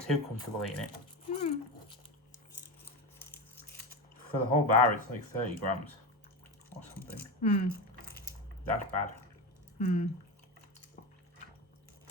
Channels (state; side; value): normal; both; correlation 0.20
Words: too comfortable eating it. For the whole bar, it's like 30 grams or something. That's bad.